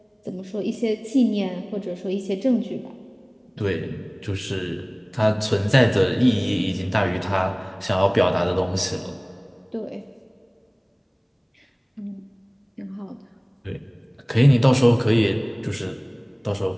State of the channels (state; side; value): identical; both; correlation 1.00